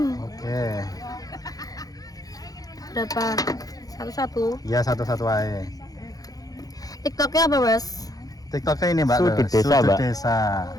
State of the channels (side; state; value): right; late; 0.18 ms